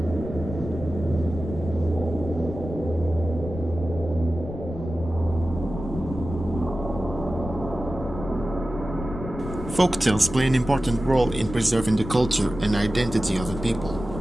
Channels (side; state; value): left; noise; rumble, 9 dB below the sound